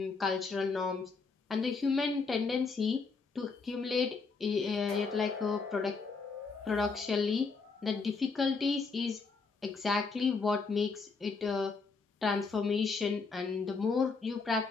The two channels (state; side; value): quieter; right; 4.5 dB